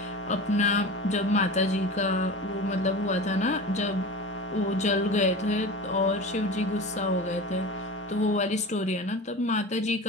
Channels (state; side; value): normal; both; correlation 0.32